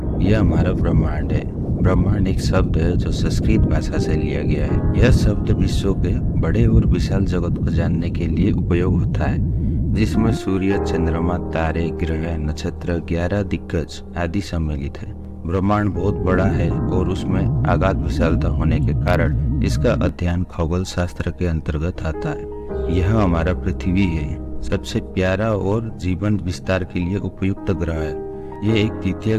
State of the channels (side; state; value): both; identical; correlation 1.00